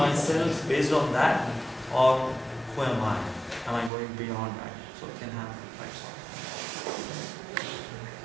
based on that? Or who am I? Am I going beyond that? So we can have lights on.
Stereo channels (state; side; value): drops out; left; at 3.9 s